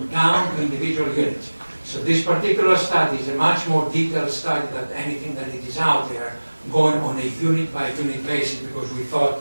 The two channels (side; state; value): both; inverted; correlation -1.00